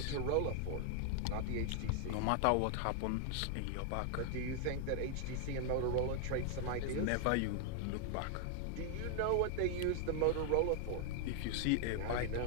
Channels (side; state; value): both; different; correlation 0.00